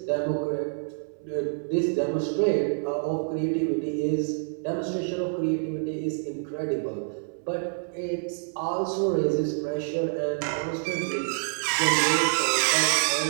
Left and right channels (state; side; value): silent; left; 60 dB below the other